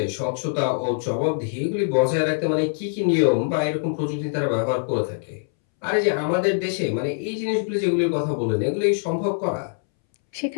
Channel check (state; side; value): silent; right; 63 dB below the other